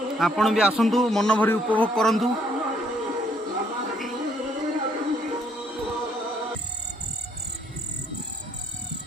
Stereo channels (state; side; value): normal; both; correlation 0.68